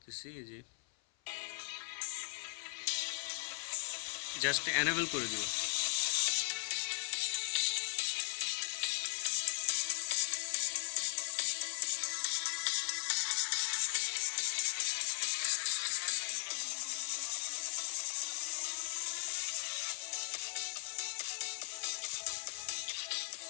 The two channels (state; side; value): silent; right; 52 dB below the other